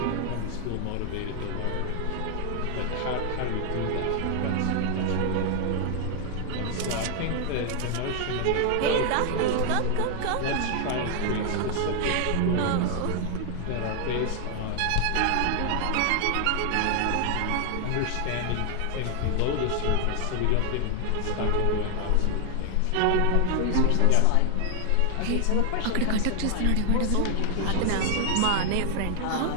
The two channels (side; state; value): both; different; correlation 0.00